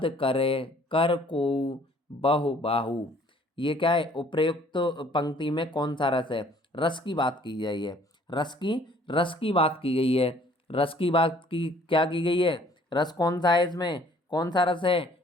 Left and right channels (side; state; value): both; normal; correlation 0.57